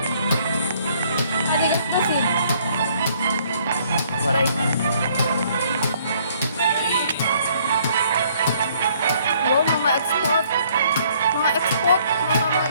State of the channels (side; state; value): both; inverted; correlation -0.63